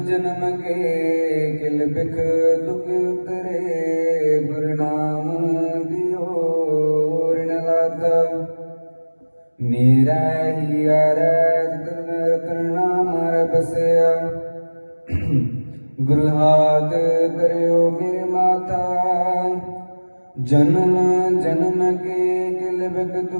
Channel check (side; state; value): both; inverted; correlation -1.00